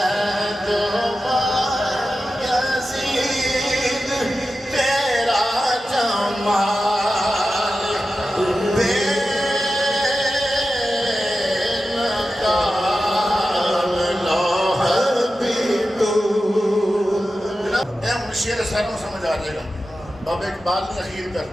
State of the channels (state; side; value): normal; both; correlation 0.92